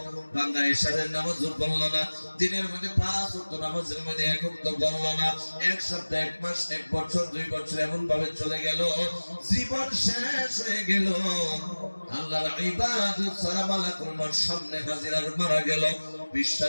বান্দা ঈশারের নামাজও পড়লো না, দিনের মধ্যে 5 ওয়াক্ত নামাজের মধ্যে এক ওয়াক্ত পড়লো না, এক সপ্তাহ, এক মাস, এক বছর, 2 বছর এমন ভাবে চলে গেল, জীবন শেষ হয়ে গেল। আল্লাহর ইবাদত ছাড়া মালাকুল মউত সামনে হাজির আর মারা গেল।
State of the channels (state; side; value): inverted; both; correlation -1.00